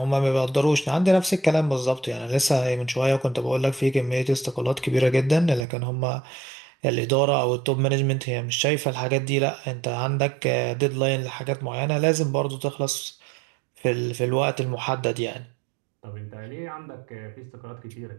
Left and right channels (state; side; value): drops out; left; at 5.7 s